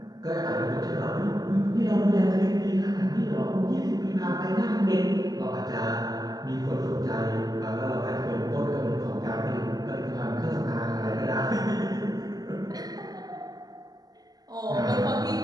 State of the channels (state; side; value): late; left; 0.19 ms